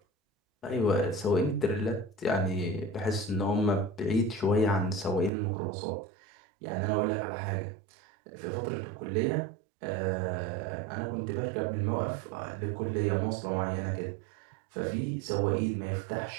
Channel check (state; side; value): drops out; left; at 5.3 s